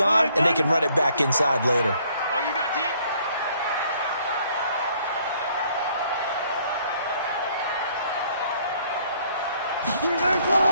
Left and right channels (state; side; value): inverted; both; correlation -0.64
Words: and they can run it back inside later. Oh, you got deep?